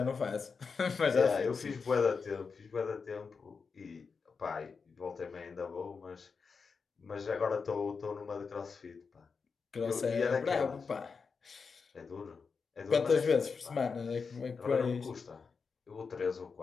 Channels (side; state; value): right; quieter; 5.2 dB